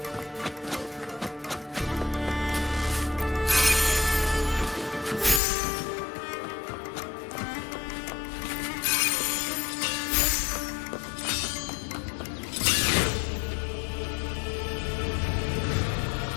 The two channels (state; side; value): drops out; right; at 5.4 s